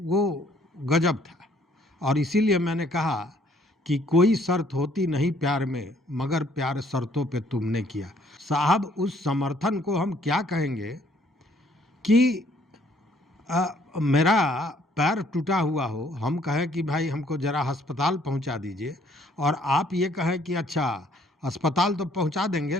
गजब था। और इसीलिए मैंने कहा कि कोई शर्त होती नहीं प्यार में, मगर प्यार शर्तों पे तुमने किया। साहब, उस समर्थन को हम क्या कहेंगे कि मेरा पैर टूटा हुआ हो, हम कहें कि भाई हमको ज़रा अस्पताल पहुंचा दीजिए, और आप ये कहें कि अच्छा अस्पताल तो पहुंचा देंगे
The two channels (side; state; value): both; normal; correlation 0.63